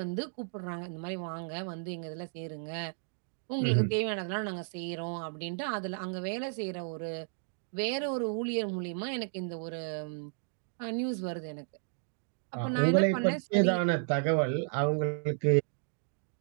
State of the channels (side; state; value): left; silent; digital silence